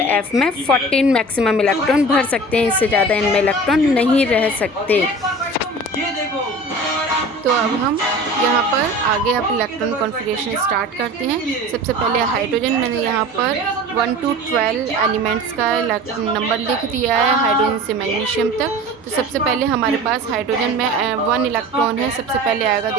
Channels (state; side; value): normal; both; correlation 0.38